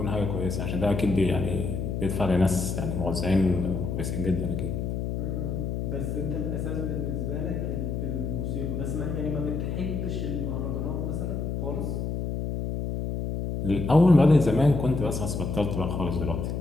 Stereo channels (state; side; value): noise; left; hum, 2 dB below the sound